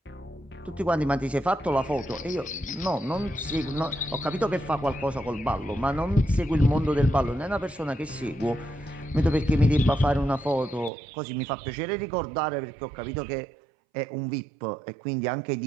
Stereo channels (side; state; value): left; drops out; at 10.9 s